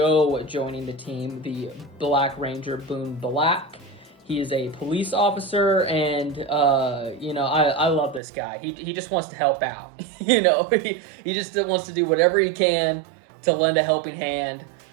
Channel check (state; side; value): drops out; left; at 8.2 s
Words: joining the team, the Black Ranger Boon Black. He is a police officer, and I love this guy. He just wants to help out. He just wants to do whatever he can to lend a helping hand.